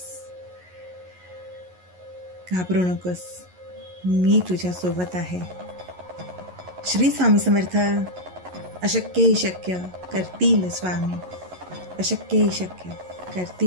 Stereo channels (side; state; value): left; late; 11 ms